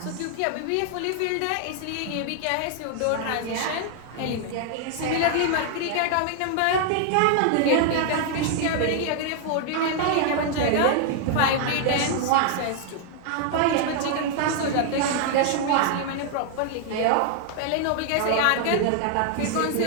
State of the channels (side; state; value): both; different; correlation 0.00